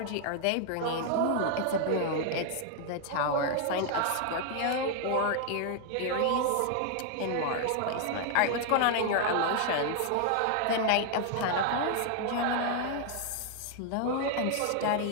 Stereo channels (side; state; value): both; different; correlation 0.00